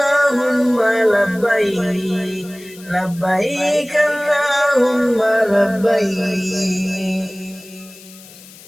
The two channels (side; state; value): left; noise; hiss, 21 dB below the sound